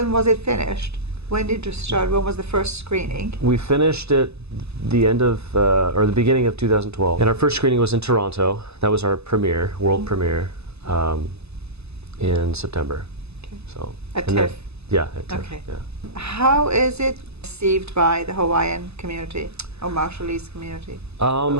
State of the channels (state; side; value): late; left; 0.79 ms